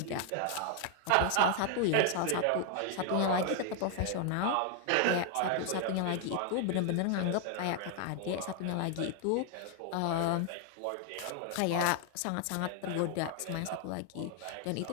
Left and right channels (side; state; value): both; different; correlation 0.00